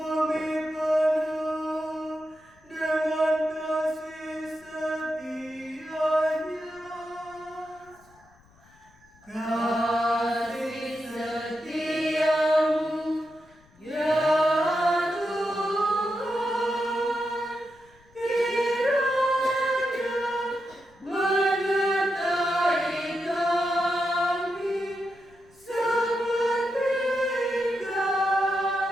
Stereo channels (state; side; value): noise; left; rumble, 30 dB below the sound